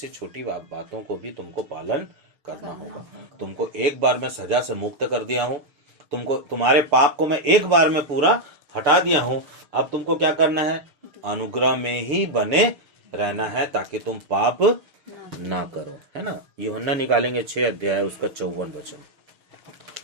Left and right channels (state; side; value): late; left; 6.9 ms